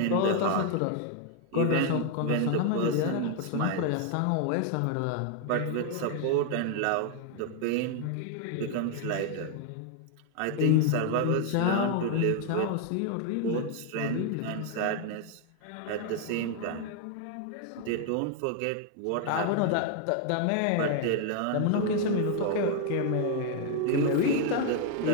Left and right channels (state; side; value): different; both; correlation 0.00